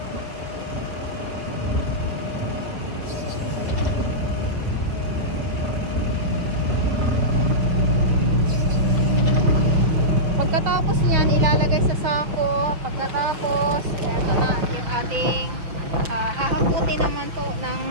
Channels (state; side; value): late; left; 5.9 ms